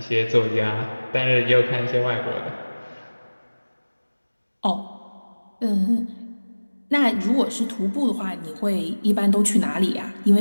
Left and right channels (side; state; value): both; inverted; correlation -1.00